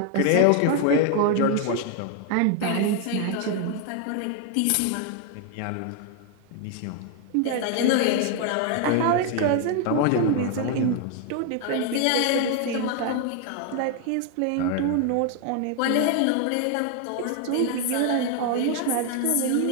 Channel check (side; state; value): both; different; correlation 0.01